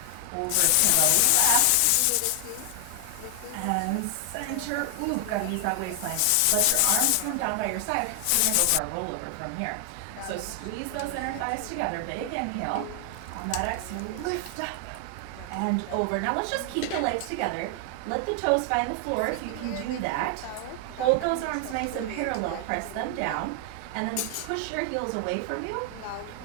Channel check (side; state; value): both; different; correlation 0.00